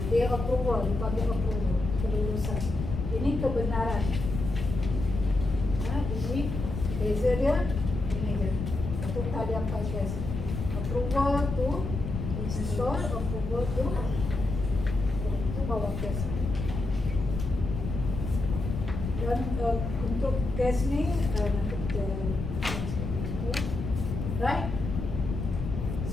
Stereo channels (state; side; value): noise; left; rumble, 5 dB below the sound